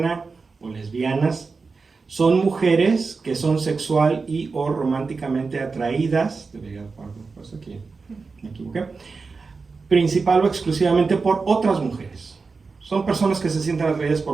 o lesbianas son mujeres que son sexual y o románticamente atraídas, debería poner aquí, me equivoqué, principal o exclusivamente por otras mujeres. Son personas que se sienten atraídas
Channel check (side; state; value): left; quieter; 4.4 dB